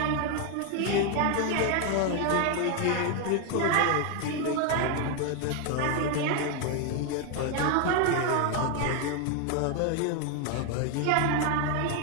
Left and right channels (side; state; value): both; different; correlation 0.01